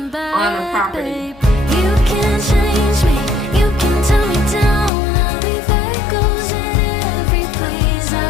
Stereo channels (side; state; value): right; drops out; at 4.9 s